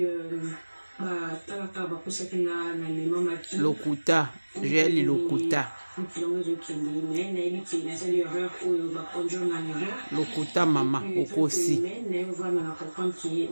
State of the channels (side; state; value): both; inverted; correlation -1.00